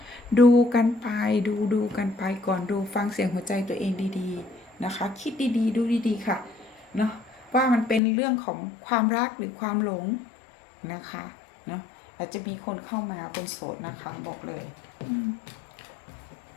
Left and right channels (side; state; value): right; drops out; at 8.0 s